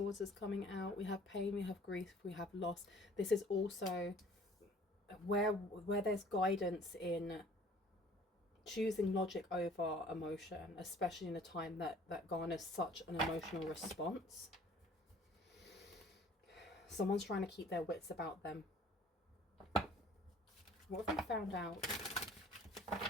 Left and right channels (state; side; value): normal; both; correlation 0.53